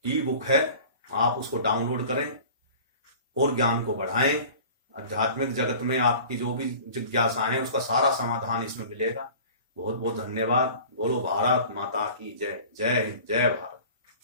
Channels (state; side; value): inverted; both; correlation -0.43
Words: ई बुक है, आप उसको डाउनलोड करें और ज्ञान को बढ़ाएं। आध्यात्मिक जगत में आपकी जो भी जिज्ञासाएं उसका सारा समाधान इसमें मिलेगा। बहुत बहुत धन्यवाद। बोलो भारत माता की जय। जय हिंद, जय भारत।